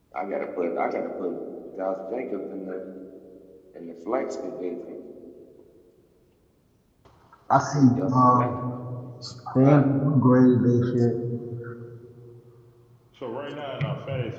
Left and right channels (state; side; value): identical; both; correlation 1.00